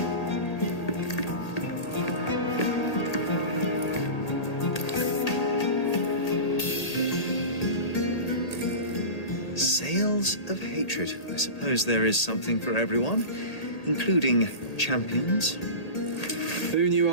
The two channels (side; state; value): right; late; 1.8 ms